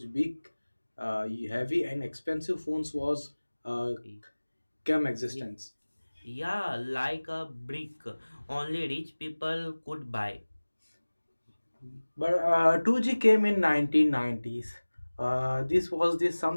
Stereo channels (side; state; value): both; inverted; correlation -1.00